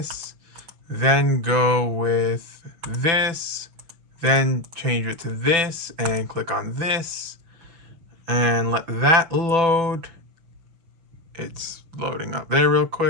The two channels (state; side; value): late; left; 6.0 ms